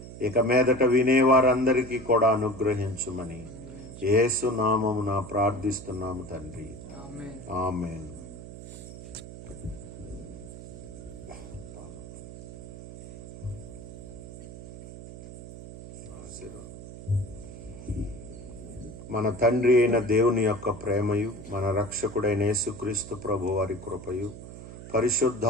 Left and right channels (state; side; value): noise; right; hum, 13 dB below the sound